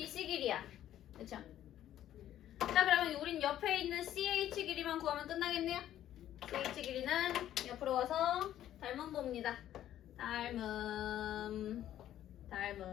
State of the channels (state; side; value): quieter; right; 12.0 dB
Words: 길이야. 그쵸? 자 그러면 우린 옆에 있는 CH 길이만 구하면 끝나겠네요. CH 길이는 옆으로 와서 닮음 봅니다. 닮음